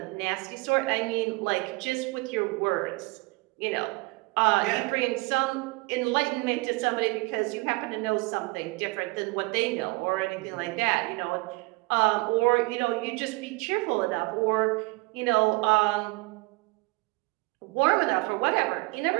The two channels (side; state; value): left; quieter; 25.2 dB